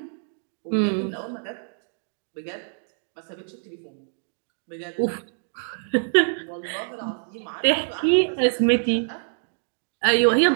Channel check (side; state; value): left; silent; digital silence